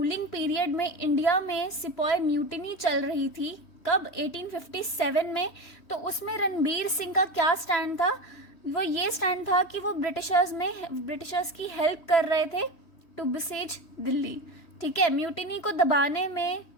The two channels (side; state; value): right; late; 3.1 ms